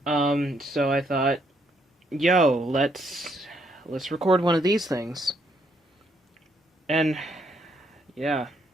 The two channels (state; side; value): normal; both; correlation 0.72